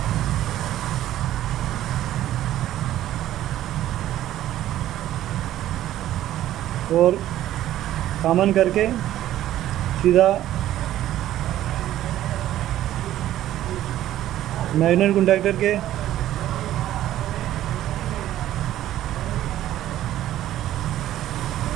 और कॉमन करके सीधा मैग्नेट कॉन्टैक्टर के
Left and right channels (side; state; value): left; quieter; 13.1 dB